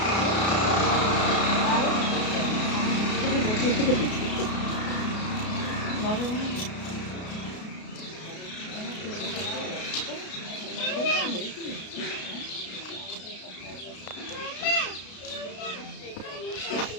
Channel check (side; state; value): right; late; 33 ms